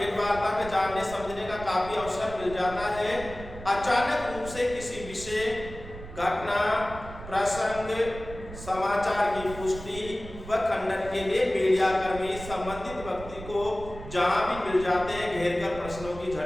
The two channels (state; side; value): noise; right; rumble, 13 dB below the sound